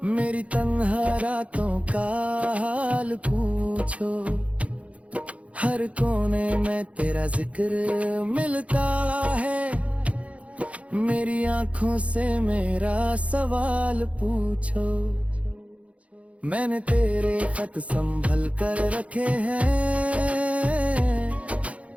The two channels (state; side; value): late; left; 0.064 ms